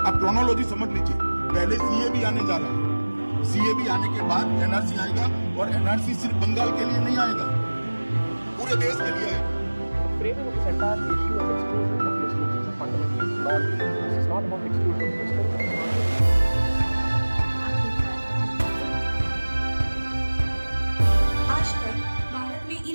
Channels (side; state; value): both; inverted; correlation -1.00